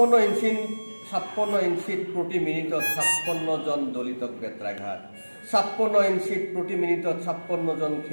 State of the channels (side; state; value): both; inverted; correlation -1.00